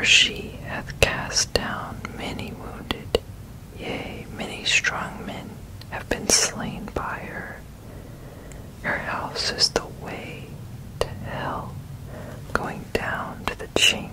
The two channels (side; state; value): both; identical; correlation 1.00